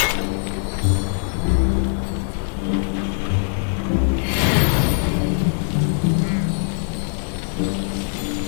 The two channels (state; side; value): silent; right; digital silence